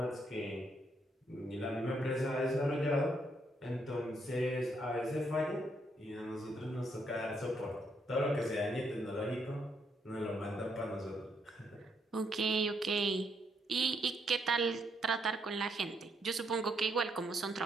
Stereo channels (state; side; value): normal; both; correlation 0.74